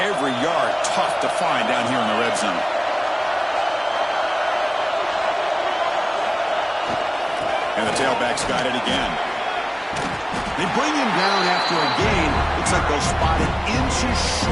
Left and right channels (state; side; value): identical; both; correlation 1.00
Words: yard tough to find down here in the red zone. And the tailback's got it again. They bring him down after a gain. Looks like they'll spot it inches